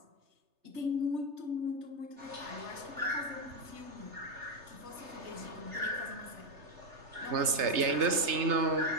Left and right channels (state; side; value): late; left; 3.3 ms